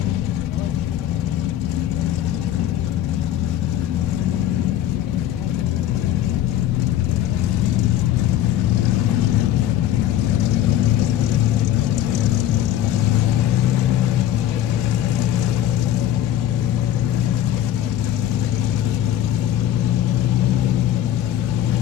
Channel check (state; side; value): quieter; right; 11.8 dB